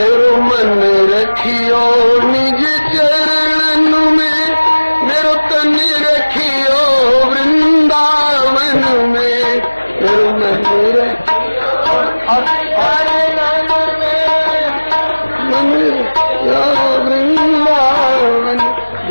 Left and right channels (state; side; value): inverted; both; correlation -1.00